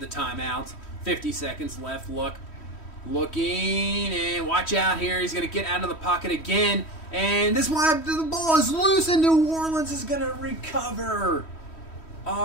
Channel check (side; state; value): right; late; 3.1 ms